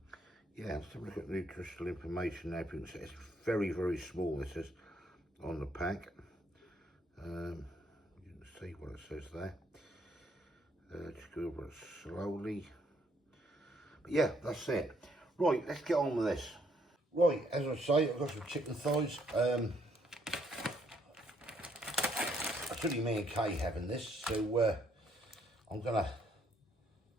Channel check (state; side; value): normal; both; correlation 0.70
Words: let's have a look at nutritional information now. You can see it's very, very small, this is, on the pack. You can see what it says there. Just go over it slowly. But yeah, that's it. Right, let's get on with this. Right, as I say, I've got some chicken thighs. It's only me and Kay having this, so I'm gonna